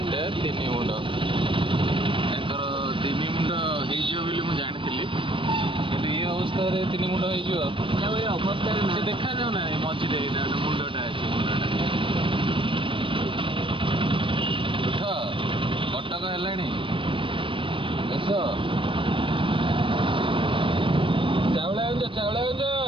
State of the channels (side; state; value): left; late; 0.25 ms